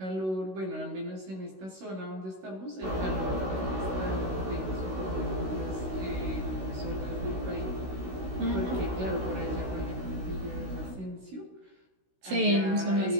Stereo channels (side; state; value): left; late; 16 ms